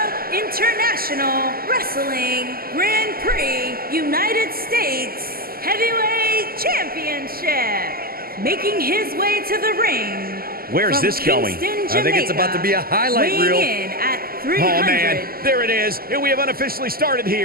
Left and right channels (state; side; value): late; left; 0.43 ms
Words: International Wrestling Grand Prix United States Heavyweight Championship. Making his way to the ring. Where's this going? Kingston, I think it's about to be a highlight reel. Weighing in at 300. Oh, man. There it is. And we have unofficially started